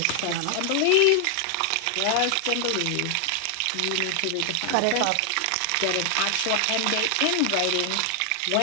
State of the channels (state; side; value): different; both; correlation 0.00